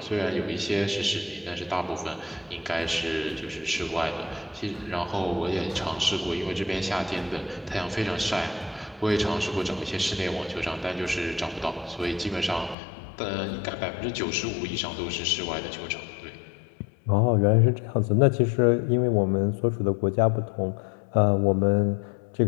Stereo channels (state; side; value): drops out; right; at 12.8 s